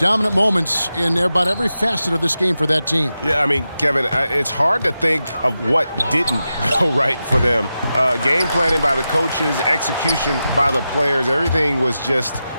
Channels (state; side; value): inverted; both; correlation -0.91